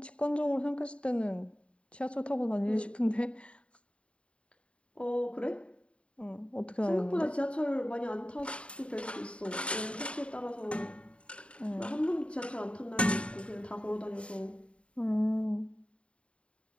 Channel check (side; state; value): right; late; 0.059 ms